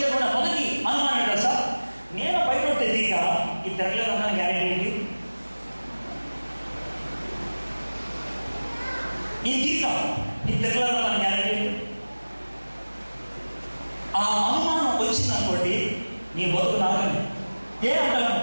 మొదటి అనుమానం ఏంటి తెలుసా? నేను బయట తెలియక ఈ తెరలేదన్న గ్యారెంటీ ఏంటి? ఈ తీకా ఈ తెరలేదన్న గ్యారెంటీ ఏంటి? ఆ అనుమానం వచ్చిందనుకోండి, నీ బతుకు నాకని ఏ అంటాను?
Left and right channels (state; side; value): inverted; both; correlation -1.00